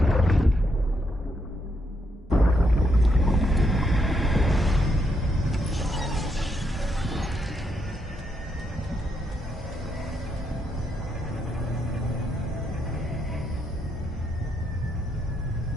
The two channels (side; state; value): both; normal; correlation 0.78